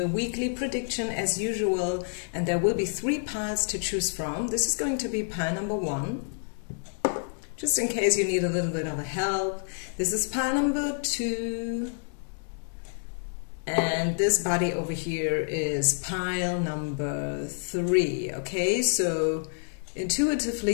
weekly prediction as usual, and there will be 3 piles to choose from. This is going to be pile number 1, just in case you need a little bit of a help. This is pile number 2, and this body over here is pile number 3. Okay, so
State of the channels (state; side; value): silent; right; digital silence